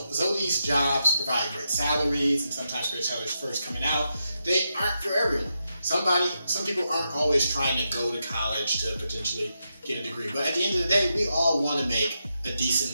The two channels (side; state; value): both; inverted; correlation -0.85